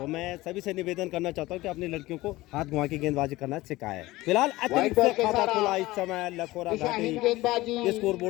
मैं सभी से निवेदन करना चाहता हूं कि अपनी लड़कियों को हाथ घुमा के गेंदबाजी करना सिखाएं। फिलहाल अतिरिक्त बॉल से के खाता सारा खुला इस समय लखोरा दिशाहीन घाटी गेंदबाजी, स्कोर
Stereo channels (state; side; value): quieter; right; 18.7 dB